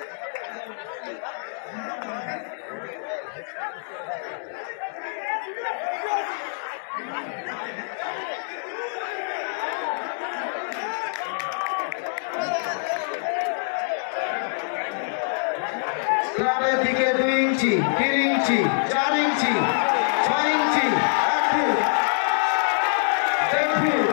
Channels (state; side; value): silent; right; 62 dB below the other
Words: ক্লাবের দিকে 2 ইঞ্চি, 3 ইঞ্চি, 4 ইঞ্চি, 6 ইঞ্চি, 1 ফুট, 1 ফুট,